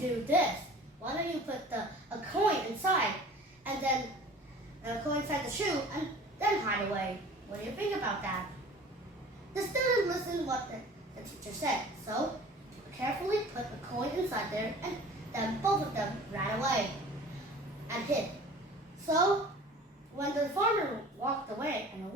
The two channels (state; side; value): normal; both; correlation 0.44